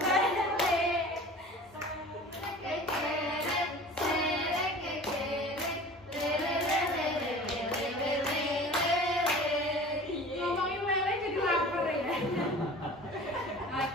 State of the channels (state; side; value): normal; both; correlation 0.41